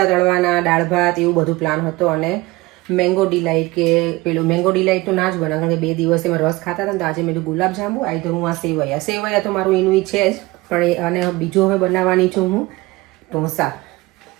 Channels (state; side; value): quieter; left; 21.2 dB